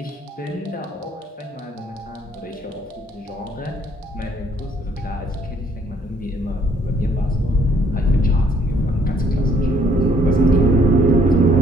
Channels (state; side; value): normal; both; correlation 0.65